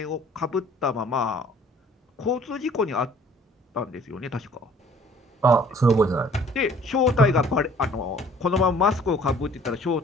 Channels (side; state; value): both; normal; correlation 0.54